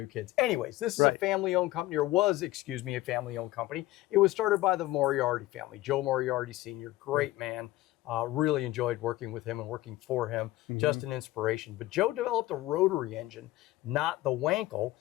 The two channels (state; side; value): quieter; right; 17.3 dB